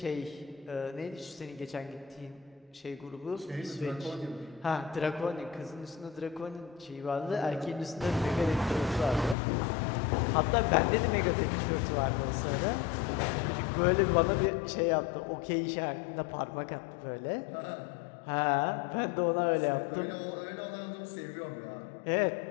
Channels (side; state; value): right; drops out; at 9.3 s